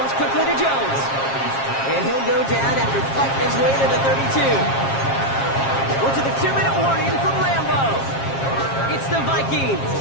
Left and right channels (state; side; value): late; right; 7.4 ms